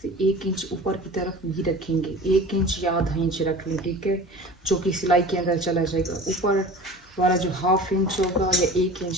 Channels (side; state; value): both; normal; correlation 0.39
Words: 1 इंच ऊपर की तरफ भी रखेंगे, 1 इंच या आधा इंच रख लें, ठीक है, जो कि सिलाई के अंदर चला जाएगा। ऊपर वाला जो हाफ इंच होगा या 1